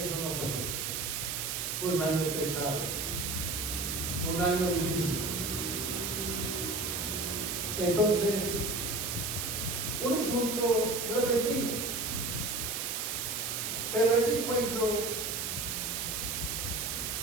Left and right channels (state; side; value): noise; right; hiss, 2 dB below the sound